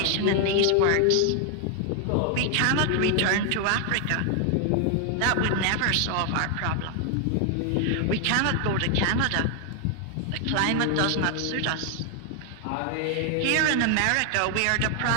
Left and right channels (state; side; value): different; both; correlation 0.00